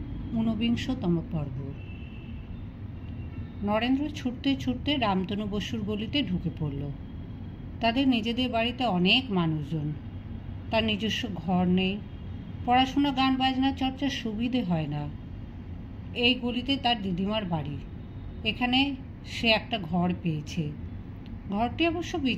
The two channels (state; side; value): identical; both; correlation 1.00